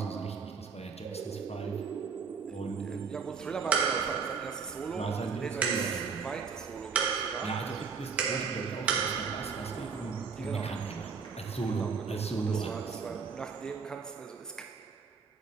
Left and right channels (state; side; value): quieter; left; 5.5 dB